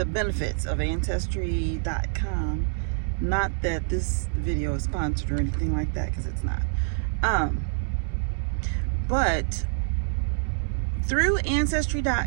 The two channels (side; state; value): left; silent; 61 dB below the other